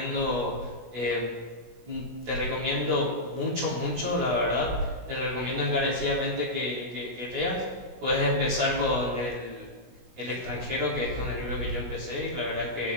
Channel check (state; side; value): late; left; 16 ms